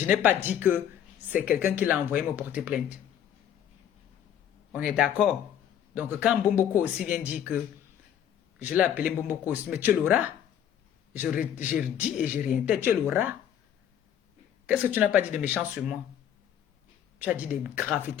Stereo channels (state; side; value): quieter; right; 9.8 dB